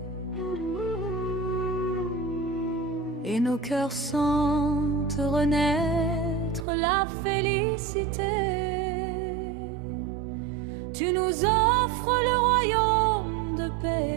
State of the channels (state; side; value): drops out; left; at 6.7 s